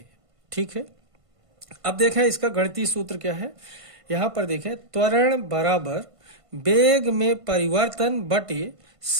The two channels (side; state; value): left; late; 1.5 ms